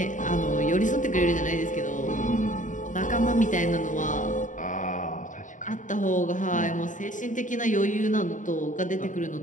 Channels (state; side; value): late; right; 0.37 ms